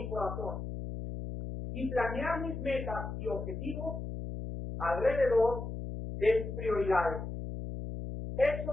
corazón y planear mis metas y objetivos alrededor de sus prioridades.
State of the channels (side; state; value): left; noise; hum, 6 dB below the sound